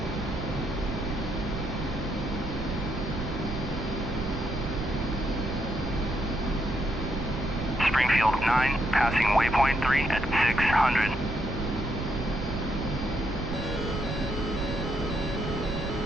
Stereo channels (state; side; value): noise; right; rumble, 6 dB below the sound